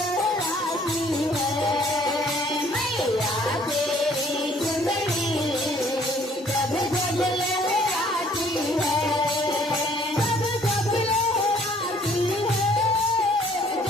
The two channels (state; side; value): normal; both; correlation 0.60